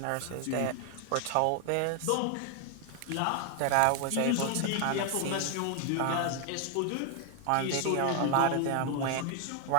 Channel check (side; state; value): both; different; correlation 0.00